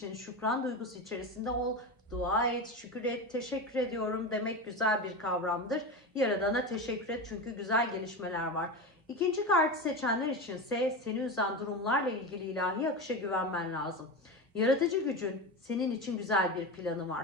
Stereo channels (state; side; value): normal; both; correlation 0.22